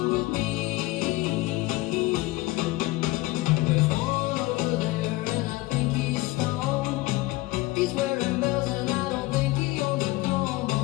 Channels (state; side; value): quieter; right; 19.9 dB